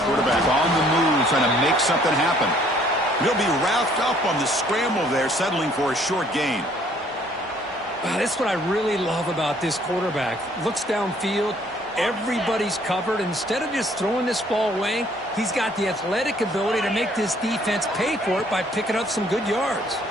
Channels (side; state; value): both; normal; correlation 0.61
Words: Quarterback on the move, trying to make something happen. He'll be wrapped up on the scramble there, settling for a short gain. That's what I really love about this quarterback. Looks downfield, everybody's covered. Instead of just throwing this ball away, he's got the athletic ability to make this defense pay for it by picking up some good yards.